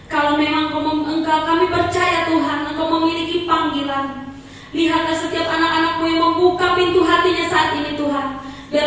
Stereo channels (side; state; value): both; identical; correlation 1.00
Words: Kalau memang Engkau, kami percaya Tuhan, Engkau memiliki panggilan. Lihatlah setiap anak-anakmu yang membuka pintu hatinya saat ini Tuhan.